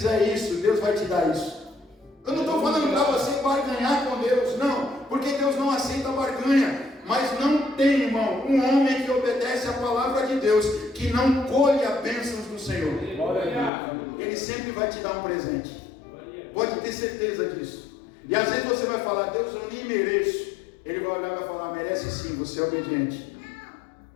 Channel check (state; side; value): drops out; right; at 13.7 s